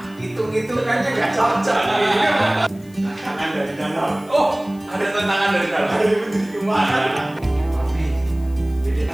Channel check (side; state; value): left; noise; hiss, 27 dB below the sound